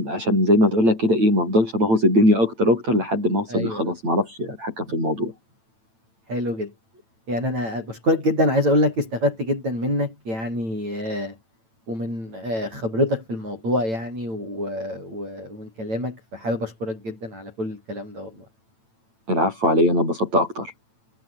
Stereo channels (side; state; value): left; late; 9.0 ms